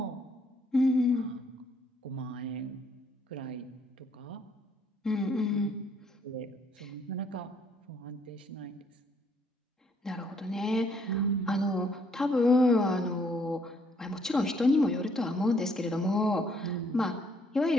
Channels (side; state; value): both; normal; correlation 0.67